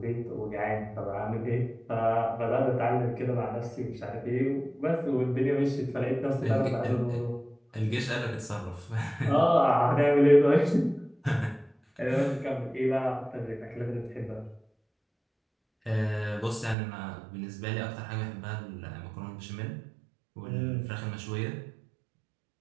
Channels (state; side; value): drops out; left; at 16.8 s